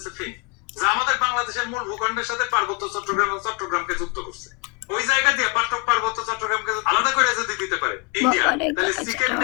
ফিন, যা আমাদের বাংলাদেশের মূল ভূখণ্ডের সাথে পার্বত্য চট্টগ্রাম এবং চট্টগ্রামকে যুক্ত করছে। ওই জায়গা দিয়ে পার্বত্য চট্টগ্রামকে আলাদা করে যদি দিতে পারে ইন্ডিয়া, বাবারে তাহলে গাইস, চিকেন এটা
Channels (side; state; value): right; quieter; 31.9 dB